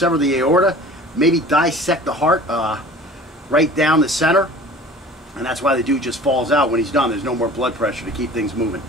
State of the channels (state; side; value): normal; both; correlation 0.44